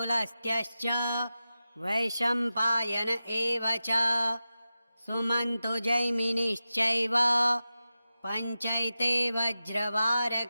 वैशम्पायन एव च सुमन्तो जैमिनिश्चैव पञ्चैते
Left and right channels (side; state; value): both; inverted; correlation -0.93